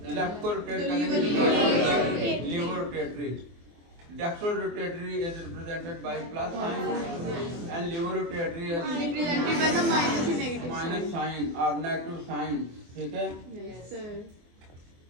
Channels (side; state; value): left; late; 24 ms